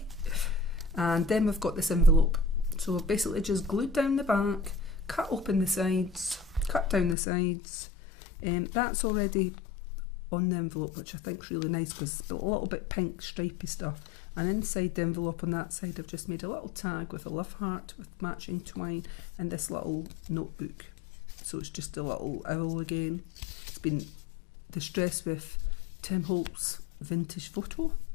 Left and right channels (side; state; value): right; drops out; at 7.2 s